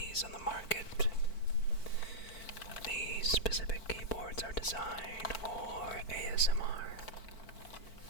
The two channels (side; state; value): right; late; 4.5 ms